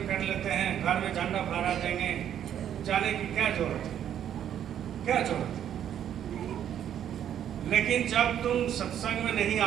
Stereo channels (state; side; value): quieter; left; 10.0 dB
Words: कर लेते हैं, घर में झंडा फहरा देंगे, जाने की क्या जरूरत है, क्या जरूरत है। लेकिन जब तुम सत्संग में नहीं